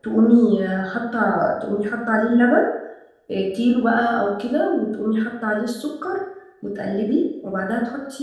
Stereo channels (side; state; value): both; identical; correlation 1.00